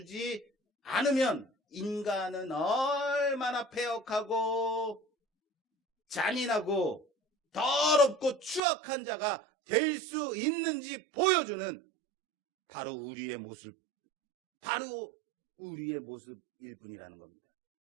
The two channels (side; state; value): left; drops out; at 8.6 s